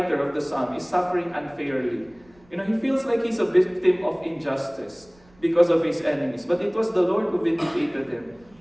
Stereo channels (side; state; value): right; noise; rumble, 30 dB below the sound